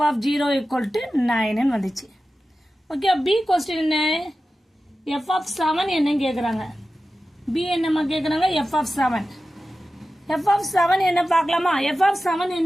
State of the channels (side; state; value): both; normal; correlation 0.94